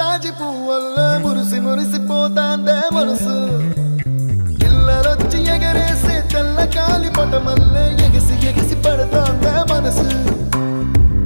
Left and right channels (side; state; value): both; inverted; correlation -1.00